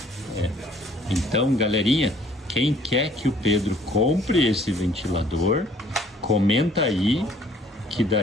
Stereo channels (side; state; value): both; normal; correlation 0.59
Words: Então, galerinha, quem quer que o Pedro compre esse ventilador, comenta aí, que